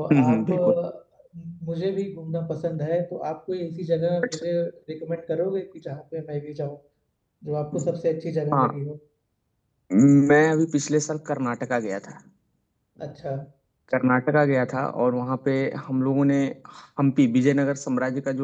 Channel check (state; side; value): identical; both; correlation 1.00